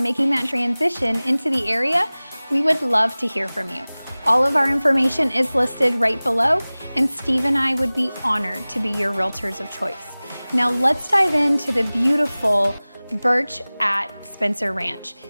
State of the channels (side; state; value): both; inverted; correlation -0.99